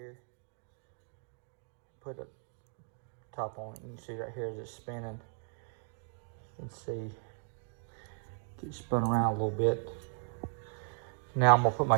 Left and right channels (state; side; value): silent; left; 54 dB below the other